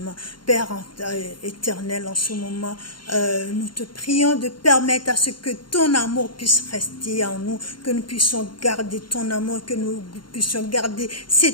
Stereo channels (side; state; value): right; late; 0.72 ms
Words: Père éternel, en ce moment, nous te prions de permettre à ce que ton amour puisse rester en nous, que nous puissions garder ton amour, que nous puissions garder